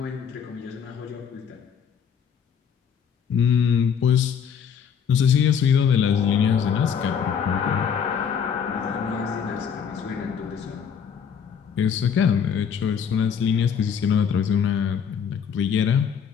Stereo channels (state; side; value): quieter; right; 7.4 dB